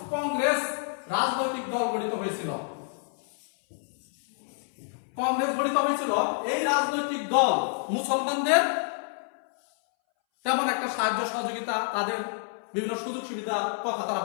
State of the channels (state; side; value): silent; right; 59 dB below the other